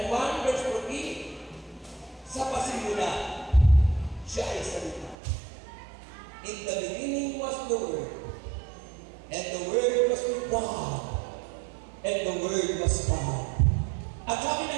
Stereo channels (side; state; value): left; drops out; at 5.2 s